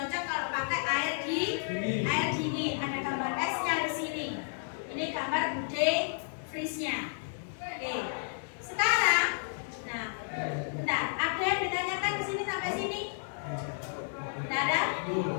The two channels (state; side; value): silent; right; digital silence